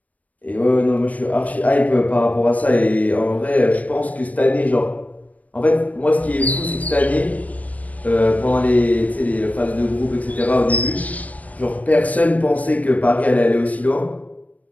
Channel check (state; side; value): late; right; 0.071 ms